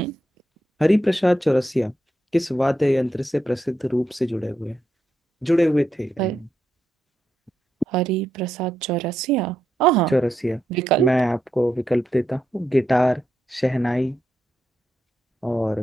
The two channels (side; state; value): both; normal; correlation 0.83